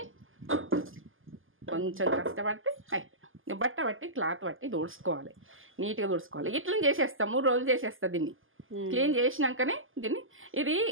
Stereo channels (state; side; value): late; left; 0.59 ms